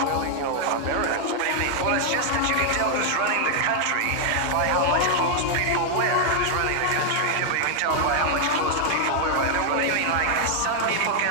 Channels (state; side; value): different; both; correlation 0.00